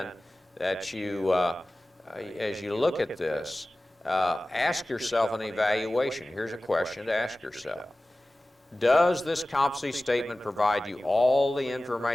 that you, as you look at this, ask yourself an evaluation. Here's a question to ask yourself. Does this competency statement provide you all the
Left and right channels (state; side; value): normal; both; correlation 0.97